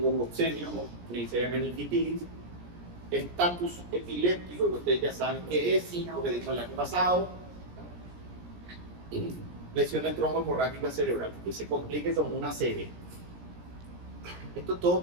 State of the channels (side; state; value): left; late; 17 ms